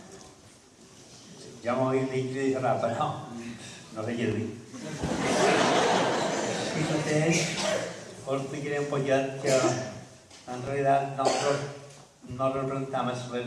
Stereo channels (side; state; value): both; identical; correlation 1.00